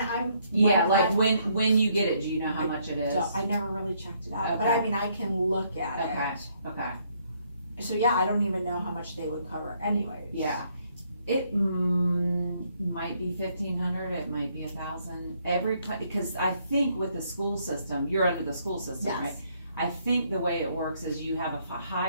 Yeah, like I'm- when you get it, do you know how much it is? so I never really checked it out, but Okay. I mean, I can look at Okay, it. okay, So yeah, I don't even know how much they would cover anyways. yeah. It might be 1,500, it might be 1,000, because I think with the school system, you're under the school system, right? Yes, I think the way it works is you have a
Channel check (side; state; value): both; inverted; correlation -0.70